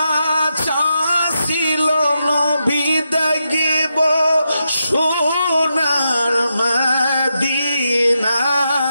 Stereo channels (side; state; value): both; inverted; correlation -0.85